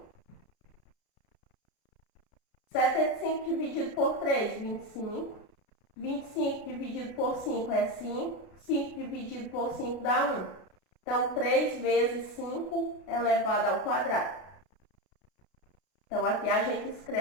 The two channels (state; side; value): late; right; 33 ms